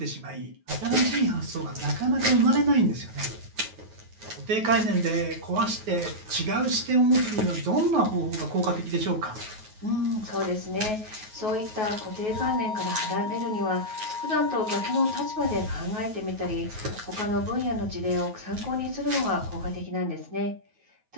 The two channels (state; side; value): late; left; 9.3 ms